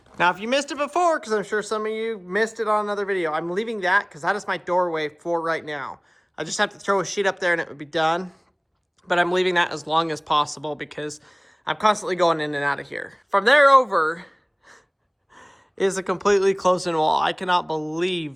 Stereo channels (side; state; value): both; identical; correlation 1.00